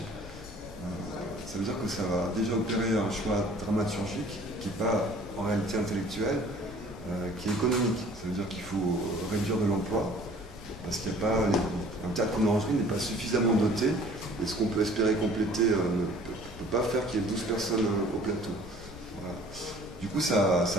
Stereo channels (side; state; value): both; normal; correlation 0.51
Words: Ça veut dire que ça va déjà opérer un choix dramaturgique qui n'est pas en réalité intellectuel, qui est économique. Ça veut dire qu'il faut réduire de l'emploi, parce qu'il n'y a pas un théâtre comme l'orangerie n'est pas suffisamment doté, et ce qu'on peut espérer compléter ne peut pas faire qu'il y ait 12 personnes au plateau. Voilà. Du coup, ça